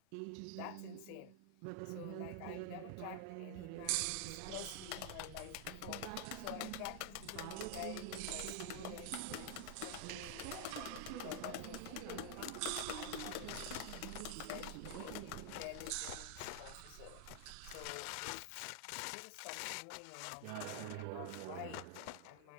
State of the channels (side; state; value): both; different; correlation 0.00